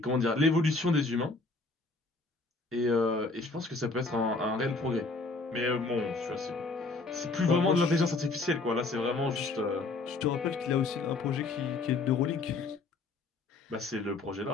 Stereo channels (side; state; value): right; quieter; 3.6 dB